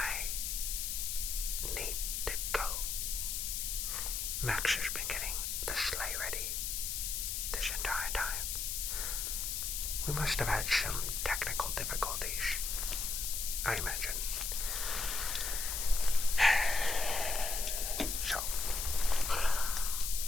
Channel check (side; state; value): left; noise; hiss, 1 dB below the sound